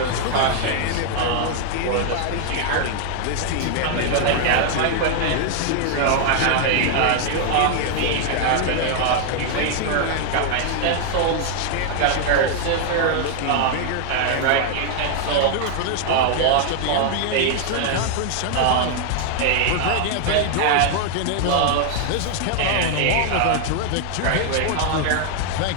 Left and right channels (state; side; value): different; both; correlation 0.00